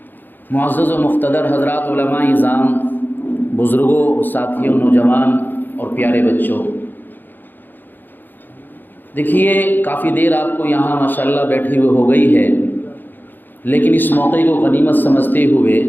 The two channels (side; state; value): right; late; 0.091 ms